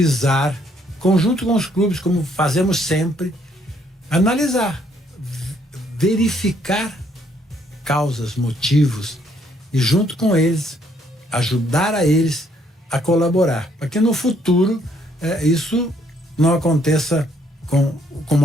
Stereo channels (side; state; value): both; normal; correlation 0.68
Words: conjunto com os clubes, como fazemos sempre, analisar, verificar causas, motivos e, junto com eles, ajudar a eles a colaborar, para que no futuro isso não aconteça como